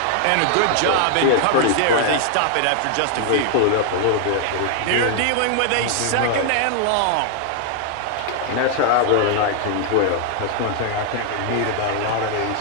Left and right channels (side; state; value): both; different; correlation 0.00